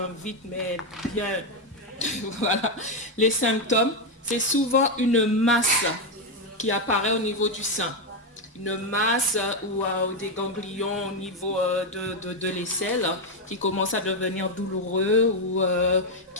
mais bien, voilà, les symptômes, c'est souvent une masse qui apparaît au niveau du sein. Une masse ou des ganglions au niveau de l'aisselle qui commencent à devenir douloureux ou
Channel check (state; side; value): normal; both; correlation 0.04